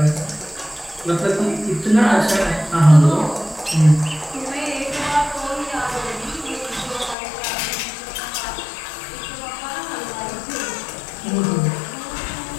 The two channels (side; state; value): right; drops out; at 7.2 s